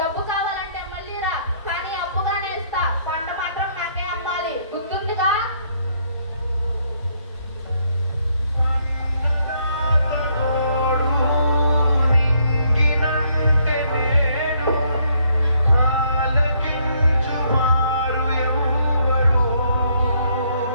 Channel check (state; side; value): inverted; both; correlation -0.70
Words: కావాలంటే మళ్ళీ రా, కానీ అప్పుగానే ఇస్తా. పంట మాత్రం నాకే అమ్మాలి, గుర్తుందిగా? నింగినంటే నేడు ఆలకించు మారు ఎవరు